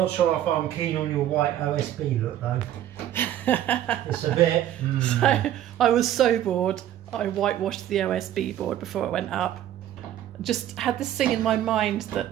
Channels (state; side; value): quieter; left; 11.9 dB